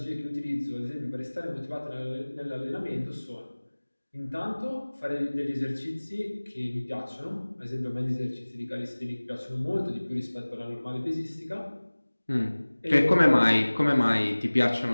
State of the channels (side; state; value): both; inverted; correlation -1.00